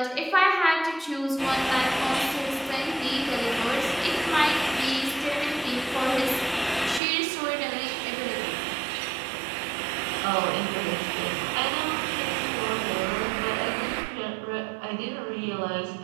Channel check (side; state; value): left; drops out; at 7.0 s